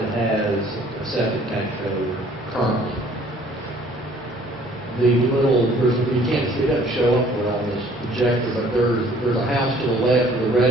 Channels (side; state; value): both; normal; correlation 0.56